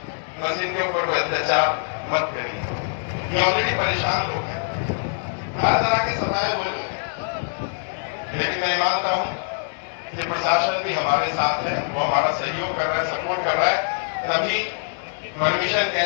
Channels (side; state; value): right; silent; digital silence